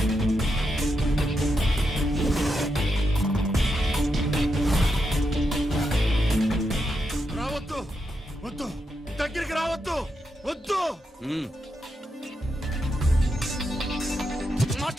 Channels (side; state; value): both; normal; correlation 0.84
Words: రావద్దు, వద్దు, దగ్గరికి రావద్దు, వద్దు.